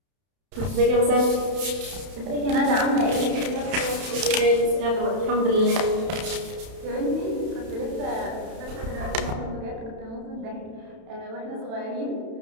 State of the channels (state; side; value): late; left; 31 ms